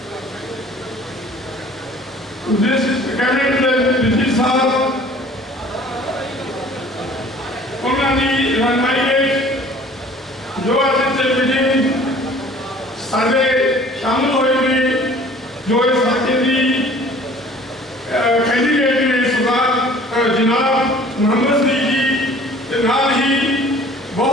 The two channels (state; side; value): normal; both; correlation 0.50